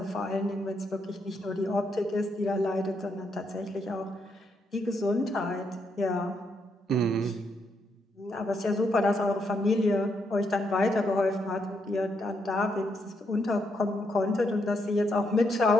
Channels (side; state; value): both; normal; correlation 0.78